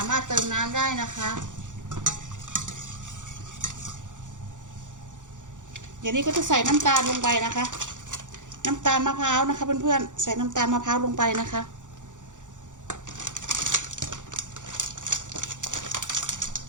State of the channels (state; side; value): late; left; 0.86 ms